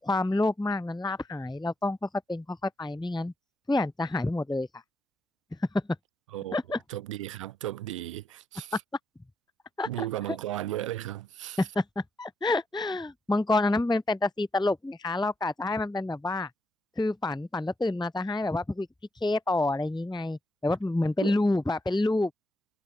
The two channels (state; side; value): normal; both; correlation 0.81